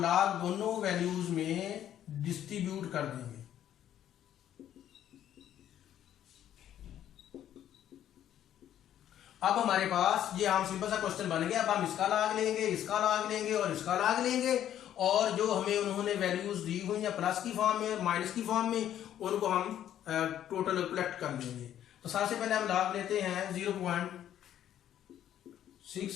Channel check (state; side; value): quieter; right; 11.1 dB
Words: दोनों वैल्यूज में डिस्ट्रीब्यूट कर देंगे। अब हमारे पास ये हम सिंपल सा क्वेश्चन बन गया। अब हम इसका लॉग लेंगे, इसका लॉग लेंगे और इसका लॉग लेंगे, और जो हमें उन्होंने वैल्यूज दी हुई या प्लस की फॉर्म में, माइनस की फॉर्म में, उनको हम टोटल कलेक्ट कर लेंगे। तो सबसे पहले हम लॉग लेते हैं